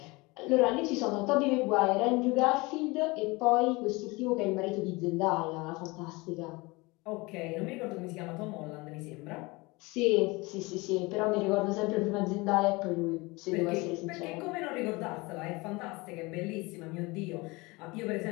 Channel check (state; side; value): quieter; right; 24.3 dB